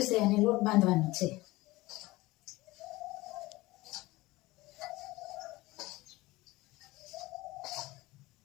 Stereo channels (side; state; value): right; quieter; 19.9 dB